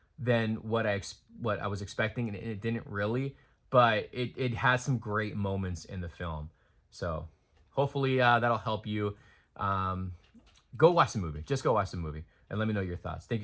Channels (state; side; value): identical; both; correlation 1.00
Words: than what I was expecting, and it didn't really. But it has some great moments in the film. So hopefully that'll help you. Go watch the movie. Just go watch the movie and let me know your thoughts. Thank